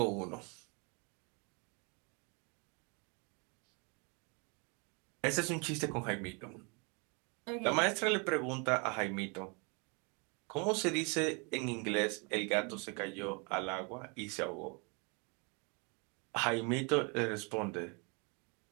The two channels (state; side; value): quieter; left; 33.1 dB